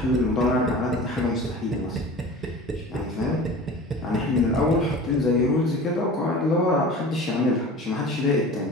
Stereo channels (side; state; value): both; normal; correlation 0.38